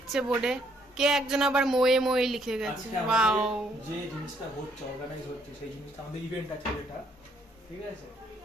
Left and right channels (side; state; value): both; normal; correlation 0.68